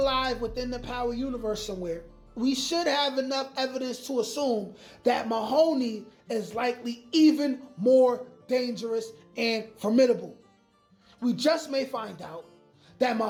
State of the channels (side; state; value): both; identical; correlation 1.00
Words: alive within the Power universe somewhere, we should have enough evidence to assume that Mahoney is likely even more dangerous and formidable. We just may find out that